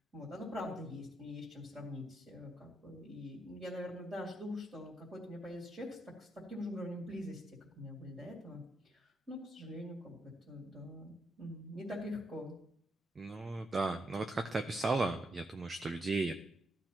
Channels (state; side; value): normal; both; correlation 0.80